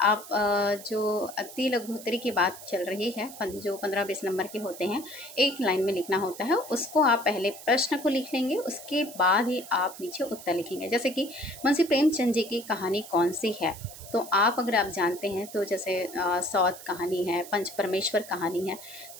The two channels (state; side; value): noise; right; hiss, 15 dB below the sound